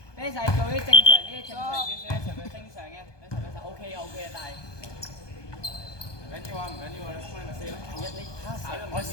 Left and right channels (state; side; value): late; right; 1.2 ms